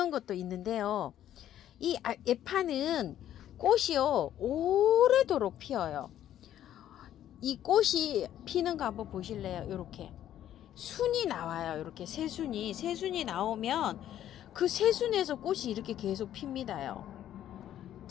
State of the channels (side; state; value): right; quieter; 11.6 dB